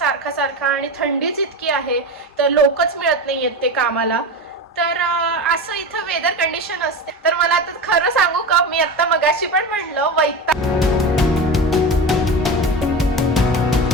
सारखा आणि थंडीच इतकी आहे तर लोकच मिळत नाहीयेत ते कामाला. तर असं इथं वेदर कंडिशन असते. तर मला आता खरं सांगू का, मी आता मगाशी पण म्हणलं वैताग.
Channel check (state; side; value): normal; both; correlation 0.24